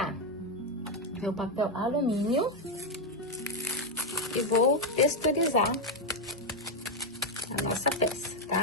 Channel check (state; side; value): normal; both; correlation 0.04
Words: meu papel alumínio e vou texturizar a nossa peça,